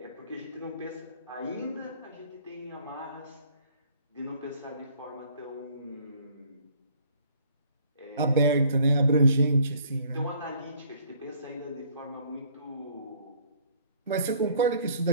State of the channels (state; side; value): inverted; both; correlation -0.58